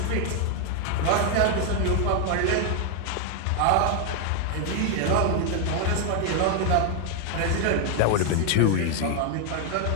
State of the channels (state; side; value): different; both; correlation 0.00